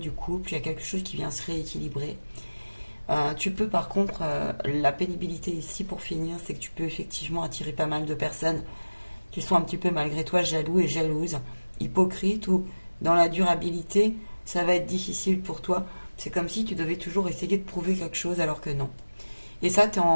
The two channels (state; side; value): inverted; both; correlation -1.00